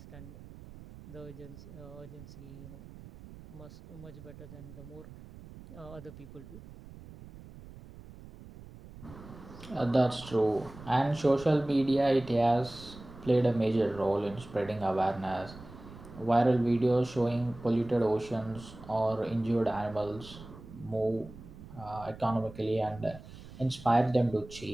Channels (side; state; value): right; noise; rumble, 17 dB below the sound